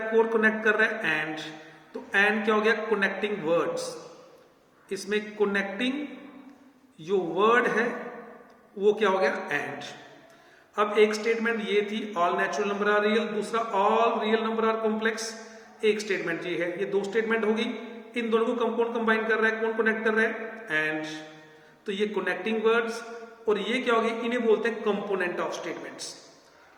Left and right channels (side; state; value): both; identical; correlation 1.00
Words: कौन कनेक्ट कर रहा है, एंड। तो एंड क्या हो गया, कनेक्टिंग वर्ड्स। इसमें कनेक्टिंग जो वर्ड है वो क्या हो गया, एंड। अब एक स्टेटमेंट ये थी all natural number are real, दूसरा all real number are complex. एक स्टेटमेंट ये है, ये दो स्टेटमेंट होगी। इन दोनों को कौन कंबाइन कर रहा है, कौन कनेक्ट कर रहा है, एंड। तो ये कनेक्टिंग वर्ड्स, और ये क्या होगी, इन्हें बोलते हैं कंपोनेंट ऑफ स्टेटमेंट्स।